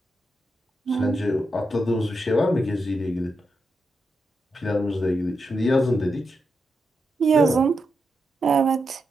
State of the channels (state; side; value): normal; both; correlation 0.86